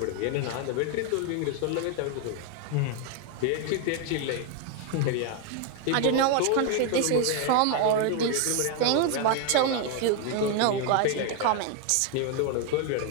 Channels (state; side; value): different; both; correlation 0.01